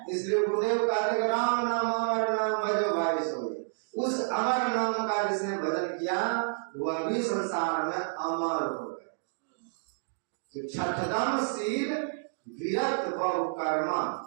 इसलिए गुरुदेव कहते हैं राम नाम अमर नाम भजो भाई सोए। उस अमर नाम का जिसने भजन किया वह भी संसार में अमर हो गए। तो छठदम शील विरत बहु कर्मा,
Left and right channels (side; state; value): left; silent; digital silence